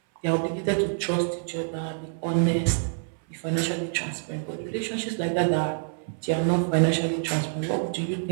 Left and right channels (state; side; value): silent; left; 60 dB below the other